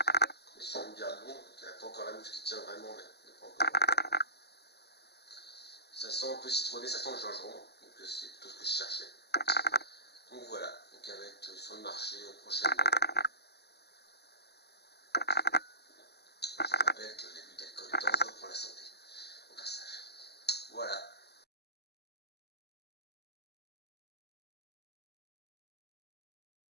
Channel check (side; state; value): right; late; 0.48 ms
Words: On est sur une bière blonde, donc il n'y a pas encore la mousse qui tient vraiment, mais pas encore. Ça sent un peu citronné, ça sent le gingembre, donc c'est plutôt ce que je cherchais. Donc voilà, donc elle va être sur le marché prochainement. Je rappelle que l'abus d'alcool est dangereux pour la santé.